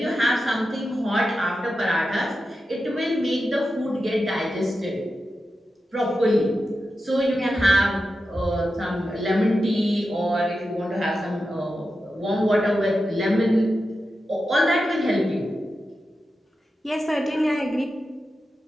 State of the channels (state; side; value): normal; both; correlation 0.90